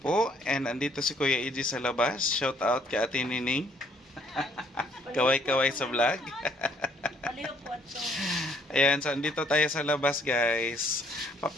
po. And andito si Kuya EJ sa labas. Shout out kay Ate Nining. Kaway-kaway sa vlog. Ayan, so andito tayo sa labas guys.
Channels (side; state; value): both; normal; correlation 0.64